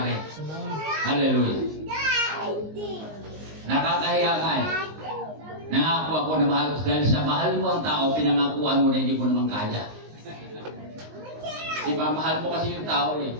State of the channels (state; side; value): late; left; 19 ms